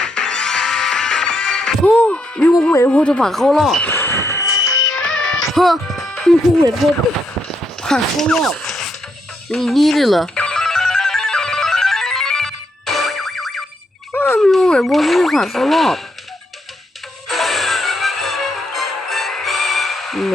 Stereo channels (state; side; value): normal; both; correlation 0.78